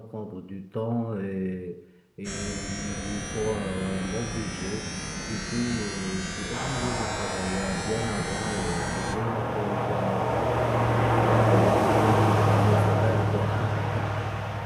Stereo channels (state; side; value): identical; both; correlation 1.00